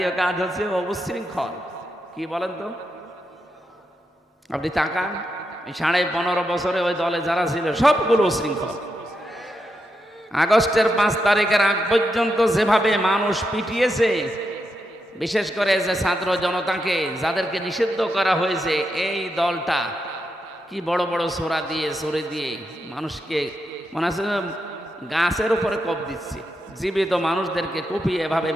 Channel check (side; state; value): both; normal; correlation 0.84